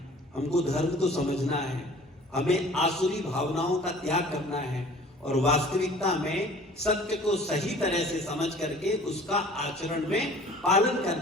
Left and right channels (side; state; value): both; normal; correlation 0.48